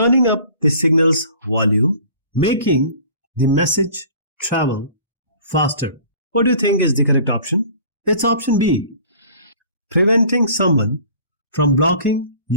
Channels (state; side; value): inverted; both; correlation -0.47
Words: up the signal's volume, making the message travel faster. What do you think is the correct option? It's option B, preventing someone from blocking